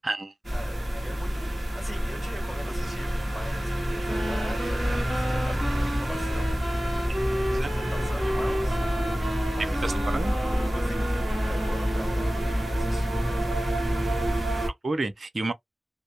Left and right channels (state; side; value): normal; both; correlation 0.96